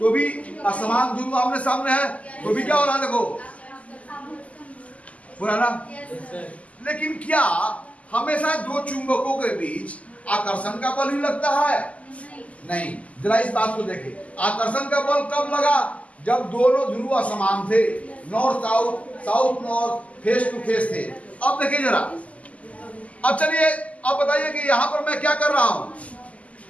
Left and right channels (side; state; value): right; late; 0.069 ms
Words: भी असमान ध्रुव आमने सामने है, तो भी क्या हो रहा है? देखो हो रहा ना? लेकिन क्या हमेशा दो चुंबकों के बीच आकर्षण का बल ही लगता है? नहीं। जरा इस बात को देखिए, आकर्षण का बल कब लगा? जब दोनों ध्रुव असमान थे, north south, south north, face to face थे। अब देखिए जरा, अब चलिए अब बताइए कि यहाँ पर मैं क्या कर रहा हूँ?